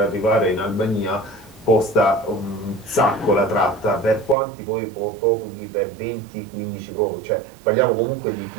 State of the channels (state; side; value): drops out; left; at 4.4 s